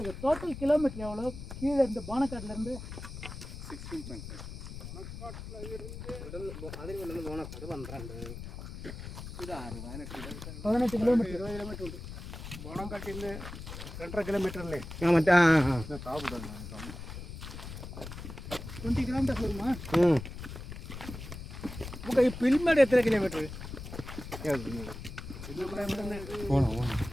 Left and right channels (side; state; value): left; noise; rumble, 10 dB below the sound